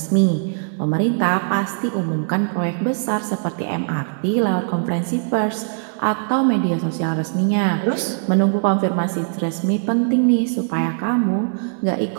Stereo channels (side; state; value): left; silent; digital silence